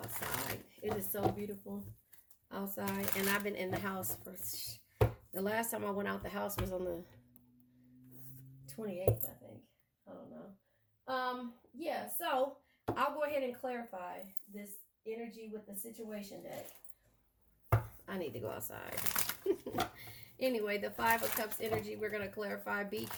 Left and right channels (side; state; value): both; identical; correlation 1.00